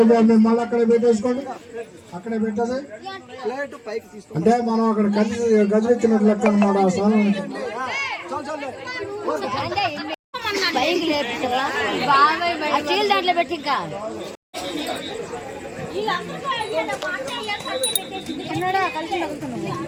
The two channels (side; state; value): both; identical; correlation 1.00